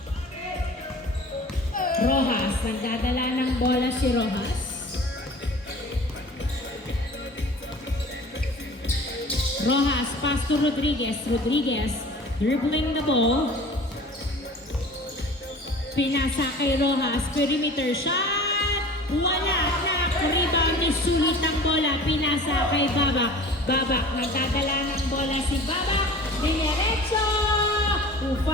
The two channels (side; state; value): both; normal; correlation 0.42